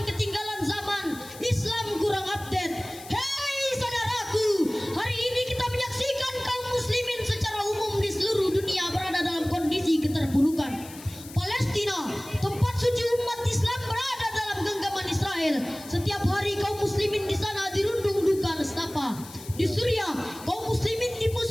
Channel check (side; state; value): left; noise; hiss, 17 dB below the sound